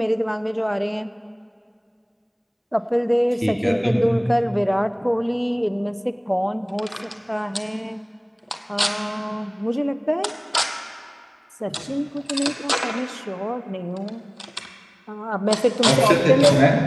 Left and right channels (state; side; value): identical; both; correlation 1.00